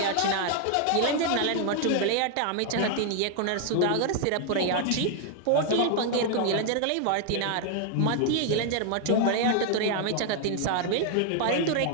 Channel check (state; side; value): different; both; correlation 0.00